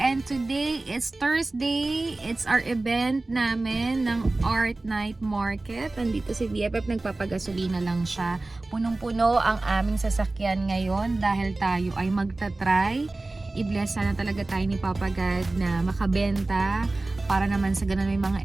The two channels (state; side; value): quieter; left; 3.1 dB